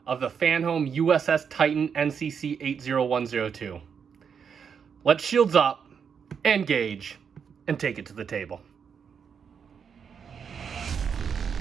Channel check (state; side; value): quieter; left; 6.8 dB